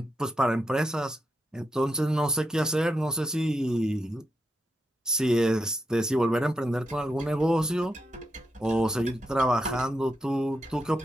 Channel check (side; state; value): both; normal; correlation 0.84